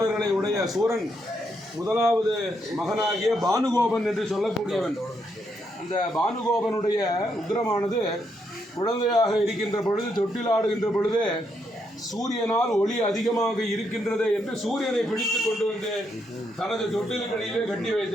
உடைய சூரன் முதலாவது மகனாகிய பானுகோபன் என்று சொல்லக்கூடியவன். அந்த பானுகோபனுடைய உக்கிரமானது குழந்தையாக இருக்கின்ற பொழுது, தொட்டிலாடுகின்ற பொழுது சூரியனால் ஒளி அதிகமாக இருக்கின்றது என்று சூரியனை பிடித்து கொண்டு வந்து தனது தொட்டிலுக்கடியிலே கட்டி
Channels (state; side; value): normal; both; correlation 0.78